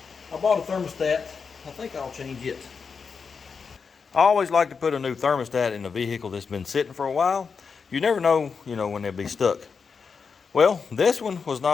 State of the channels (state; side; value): quieter; right; 5.5 dB